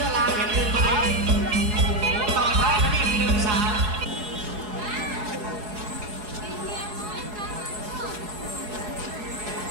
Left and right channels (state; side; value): late; left; 4.8 ms